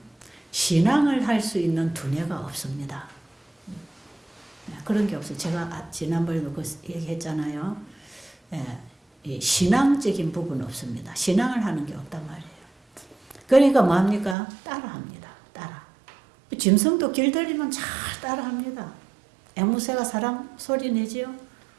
신앙을 할 수 있는 두뇌가 없습니다. 그런 게 없어요. 제가 지난번에도 그 얘기했잖아요. 이 신앙적인 부분은 없습니다. 신앙을 하는 게 없단 말이에요. 그러니까 뭐합니까? 따라합니다. 따라. 짐승도 길들이면 잘 따라합니다. 앵무새가 사람 소리 내지요?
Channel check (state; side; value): drops out; left; at 14.4 s